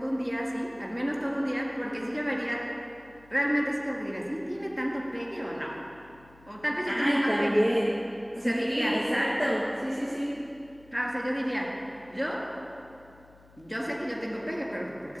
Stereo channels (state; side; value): noise; left; hum, 25 dB below the sound